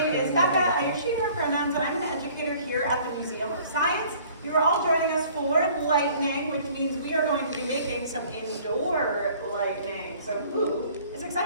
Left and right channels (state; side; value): inverted; both; correlation -0.54